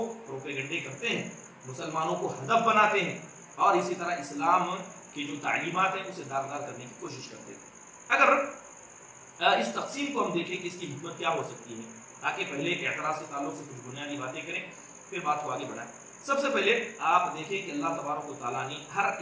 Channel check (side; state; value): both; identical; correlation 1.00